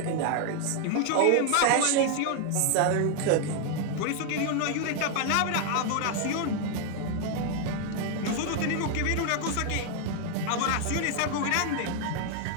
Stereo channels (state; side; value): different; both; correlation 0.00